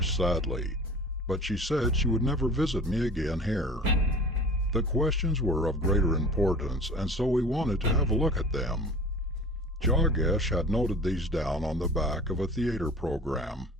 sadly, "but she said she would never visit me again here." The questions were of greater importance, and so we wanted to have a look at them. Jagdish had noted these down on the back of a theater program,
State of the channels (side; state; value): both; normal; correlation 0.41